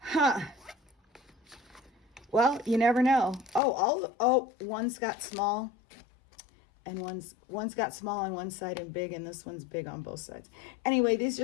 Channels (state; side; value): drops out; right; at 3.6 s